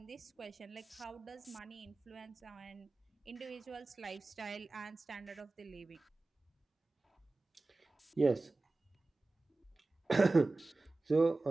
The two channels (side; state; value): left; quieter; 3.2 dB